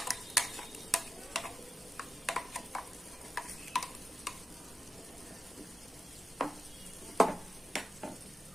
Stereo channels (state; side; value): normal; both; correlation 0.90